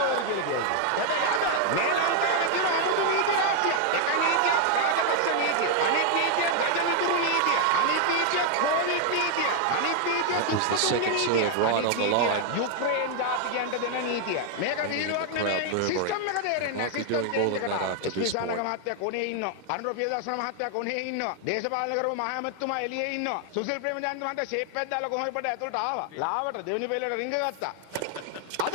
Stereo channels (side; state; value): both; different; correlation 0.00